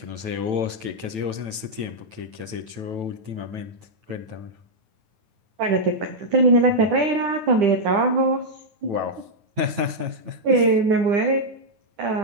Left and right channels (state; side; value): late; left; 9.1 ms